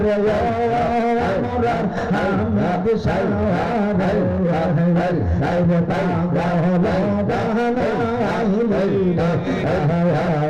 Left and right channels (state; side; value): identical; both; correlation 1.00